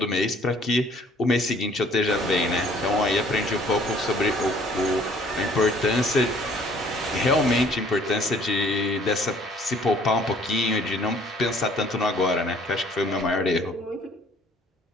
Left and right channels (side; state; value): both; normal; correlation 0.57